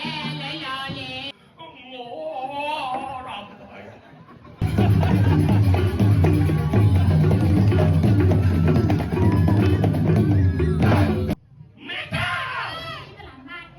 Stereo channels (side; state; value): both; identical; correlation 1.00